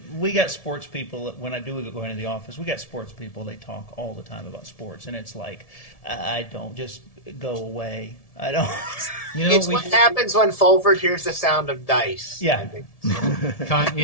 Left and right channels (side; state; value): right; late; 1.7 ms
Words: We got sports people. When I do go into the office, we got sports people. They talk all the time about sports, and it's like, I don't just go away. I don't. You know, It's what happens when Fulford hears the sound of dice. Yeah. I think.